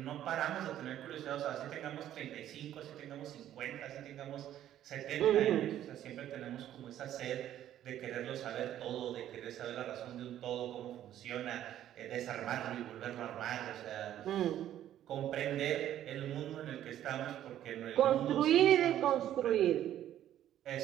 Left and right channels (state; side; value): quieter; left; 11.8 dB